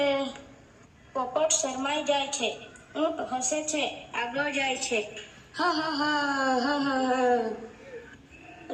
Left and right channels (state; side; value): identical; both; correlation 1.00